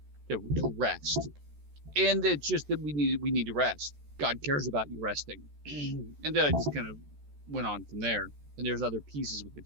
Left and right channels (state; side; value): late; left; 14 ms